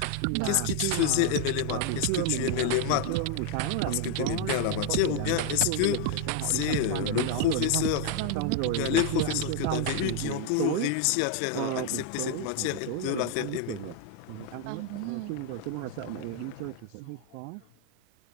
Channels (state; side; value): different; both; correlation 0.00